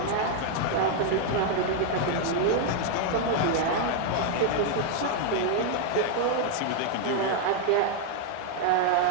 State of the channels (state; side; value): different; both; correlation 0.00